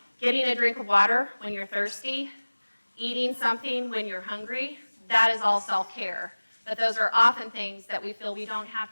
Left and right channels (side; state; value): both; inverted; correlation -1.00